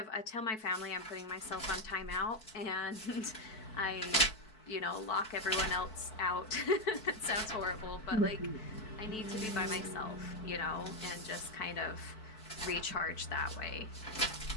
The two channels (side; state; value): right; late; 4.6 ms